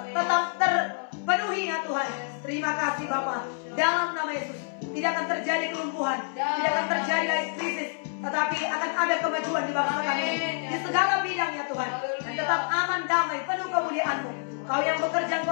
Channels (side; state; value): right; silent; 60 dB below the other